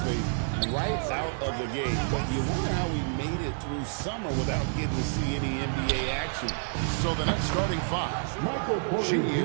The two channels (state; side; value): silent; left; digital silence